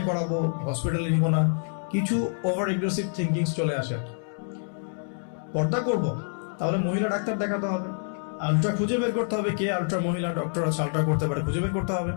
করাবো, হসপিটালে নিব না। কিছু ওভার এগ্রেসিভ থিঙ্কিংস চলে আসে। পর্দা করব, তাহলে মহিলা ডাক্তার দেখাতে হবে, আলট্রা খুঁজে বের করতে হবে, কে আলট্রা মহিলা ডক্টর আছে আলট্রা করতে পারে, খুঁজে বের করতে হবে।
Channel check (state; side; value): silent; right; digital silence